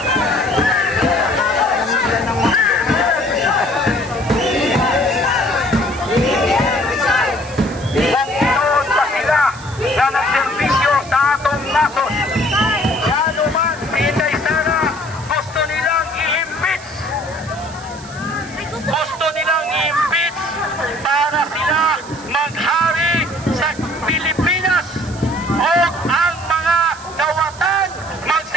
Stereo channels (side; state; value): right; noise; hiss, 18 dB below the sound